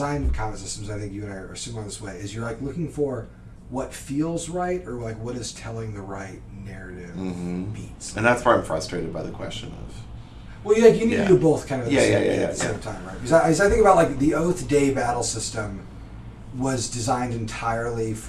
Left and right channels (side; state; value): both; identical; correlation 1.00